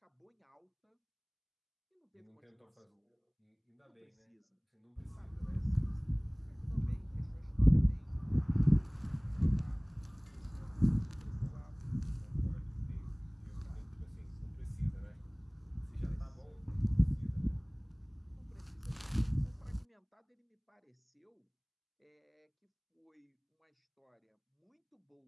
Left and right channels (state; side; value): identical; both; correlation 1.00